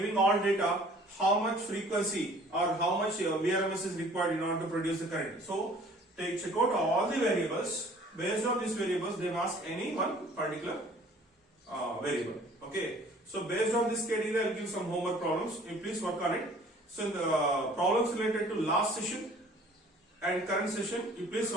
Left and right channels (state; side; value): normal; both; correlation 0.52